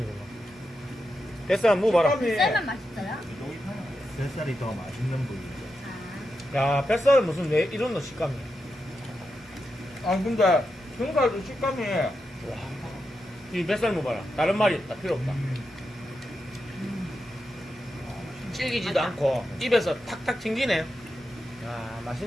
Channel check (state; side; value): normal; both; correlation 0.87